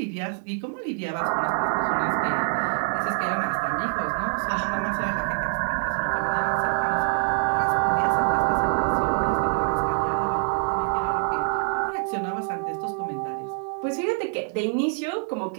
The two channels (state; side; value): silent; left; 58 dB below the other